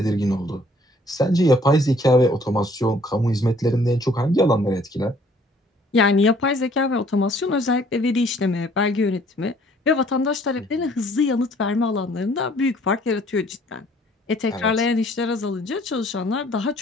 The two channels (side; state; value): both; normal; correlation 0.60